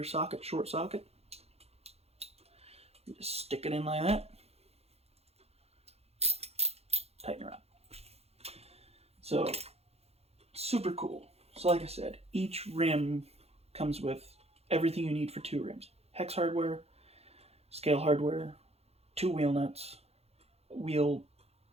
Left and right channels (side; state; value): left; late; 0.30 ms